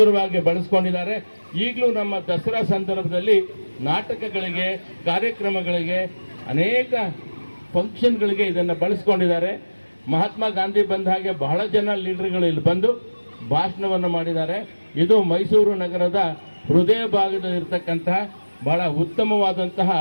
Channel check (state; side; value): inverted; both; correlation -1.00